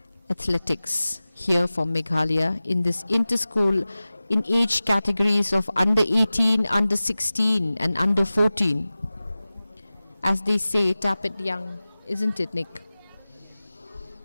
athletics here from Meghalaya in this inter-school in age categories of under 18, under 16, and under 14. As they say, tap it young, isn't it, Nick?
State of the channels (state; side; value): inverted; both; correlation -0.97